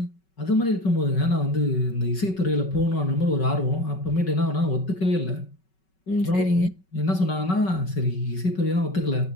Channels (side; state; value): right; late; 5.3 ms